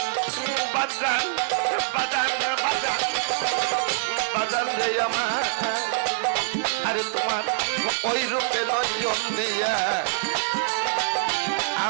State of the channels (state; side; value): silent; left; digital silence